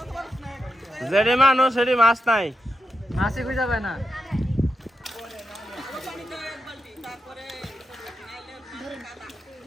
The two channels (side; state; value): both; normal; correlation 0.86